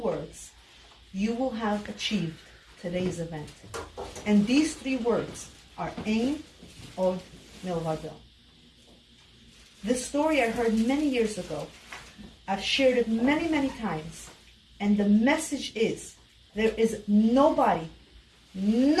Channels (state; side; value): identical; both; correlation 1.00